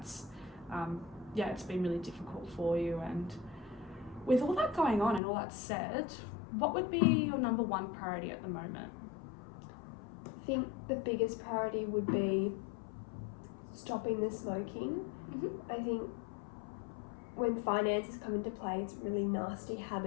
it's been really difficult for you. And with all that going on and all that said, what would be your number one priority at the moment? I think the biggest priority would be stopping the smoking. I think when finances come into play, it's a really nasty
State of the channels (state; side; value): drops out; right; at 5.2 s